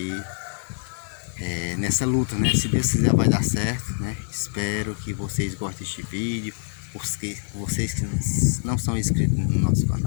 nessa luta, né? Se Deus quiser vai dar certo, né? Espero que vocês gostem deste vídeo. Vocês que não são inscritos no nosso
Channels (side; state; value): right; silent; 61 dB below the other